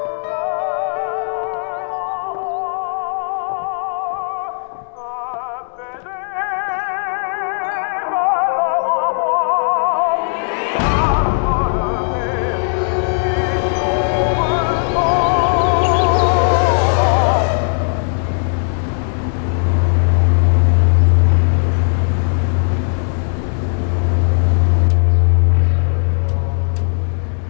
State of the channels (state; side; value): silent; right; digital silence